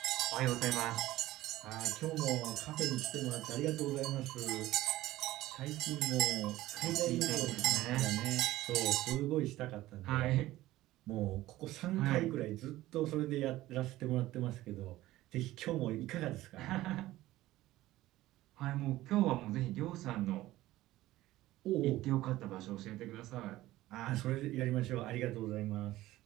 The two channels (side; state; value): left; quieter; 16.3 dB